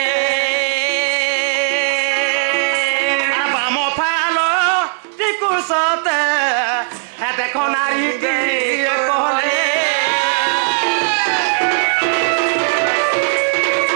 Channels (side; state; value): left; silent; digital silence